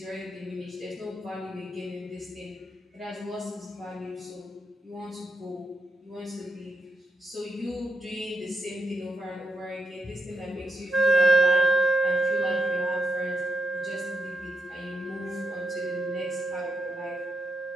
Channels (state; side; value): normal; both; correlation 0.81